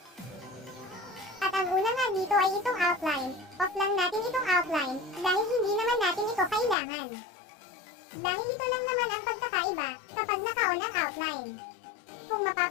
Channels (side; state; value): right; drops out; at 6.8 s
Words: At ang una nga dito ay itong outline. Off lang natin itong outline dahil hindi naman natin ito kailangan. Dahil ito lang naman ang pagkakaiba kapag naka-on ang outline. Kung